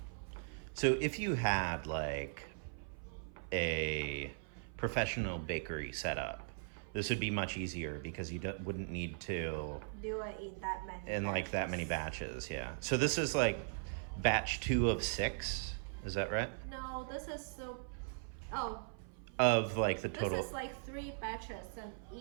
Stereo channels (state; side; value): silent; left; 52 dB below the other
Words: So if you had like a professional bakery setup, this would be much easier because you wouldn't need to Do it in that many like that many batches. Yeah. So this is like batch 2 of 6. Is that right? No, this is Of like the total. This is like 3 batches, and